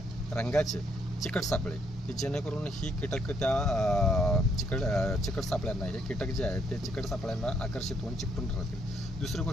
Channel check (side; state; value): both; normal; correlation 0.72